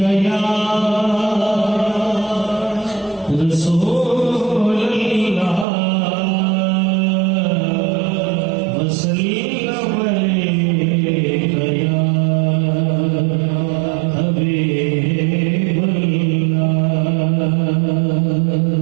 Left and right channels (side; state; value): left; drops out; at 5.7 s